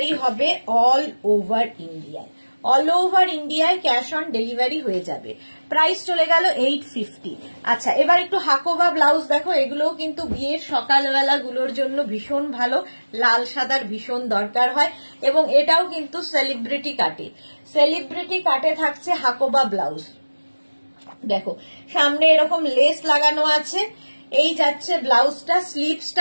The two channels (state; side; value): inverted; both; correlation -1.00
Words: হবে অল ওভার ইন্ডিয়ায়, অল ওভার ইন্ডিয়ায় ক্যাশ অন ডেলিভারি হয়ে যাবে। প্রাইস চলে গেল 850। আচ্ছা, এবার একটু হাকোবা ব্লাউজ দেখো, এগুলোও কিন্তু বিয়ের সকালবেলা গুলোর জন্য ভীষণ ভালো, লাল সাদার ভীষণ দরকার হয় এবং এটাও কিন্তু সেলিব্রিটি কাটে, সেলিব্রিটি কাটে থাকছে হাকোবা ব্লাউজ। দেখো সামনে এরকম লেস লাগানো আছে, এই যাচ্ছে ব্লাউজটা,